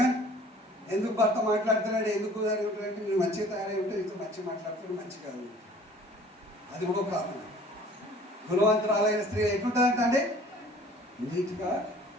ఎందుకు భర్త మాట్లాడుతున్నాడు, ఎందుకు అంటే నేను మంచిగా తయారై ఉంటే నీతో మంచిగా మాట్లాడుతున్నాడు, మంచిగా అది కూడా ఒక కారణం. గుణవంతురాలైన స్త్రీ ఎట్లుంటుందంట అంటే నీట్గా,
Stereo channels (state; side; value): normal; both; correlation 0.51